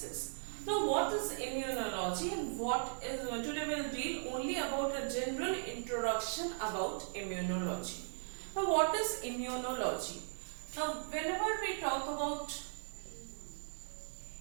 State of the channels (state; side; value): silent; left; digital silence